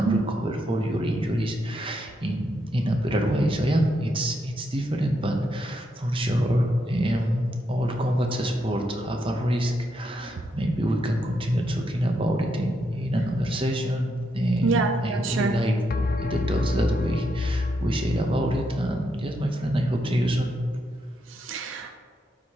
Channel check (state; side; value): normal; both; correlation 0.80